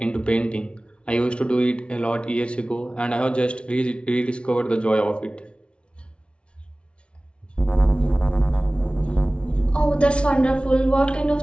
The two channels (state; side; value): late; right; 0.059 ms